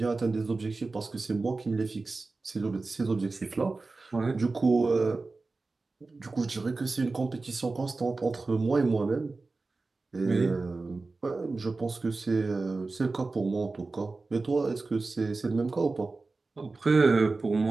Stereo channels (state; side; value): quieter; left; 3.7 dB